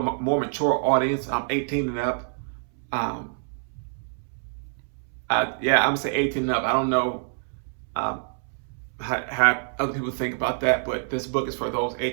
more mature audience, 18 and up. Yeah, I'm going to say 18 and up. I don't know how other people think about that, but this book is for those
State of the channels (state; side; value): silent; left; 61 dB below the other